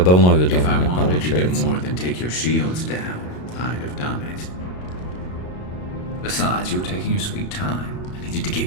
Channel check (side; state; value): right; late; 33 ms